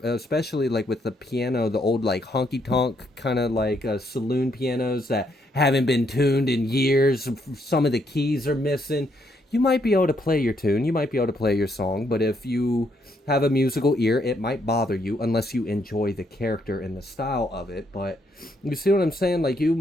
especially like with the piano, the old like honky tonk kind of like saloon pianos that haven't been tuned in years. Some of the keys are missing. You might be able to play your tune, you might be able to play your song, but if you have a musical ear, it might bother you unless you enjoy the character and the style of it. But you see what I'm saying? Like, you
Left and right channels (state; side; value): normal; both; correlation 0.74